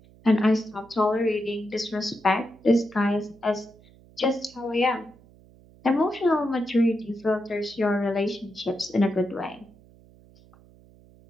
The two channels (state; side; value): noise; right; hum, 26 dB below the sound